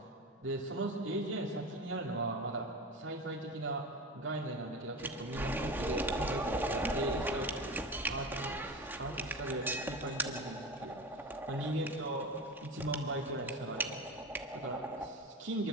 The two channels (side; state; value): both; normal; correlation 0.27